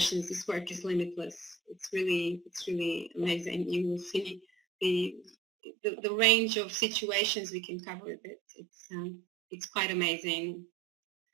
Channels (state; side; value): drops out; left; at 5.3 s